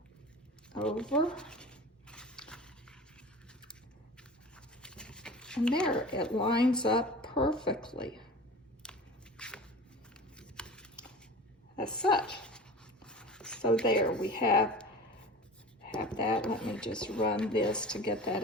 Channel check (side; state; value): both; normal; correlation 0.36